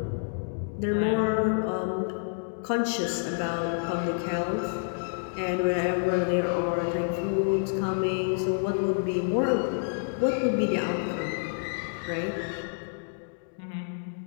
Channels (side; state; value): right; silent; digital silence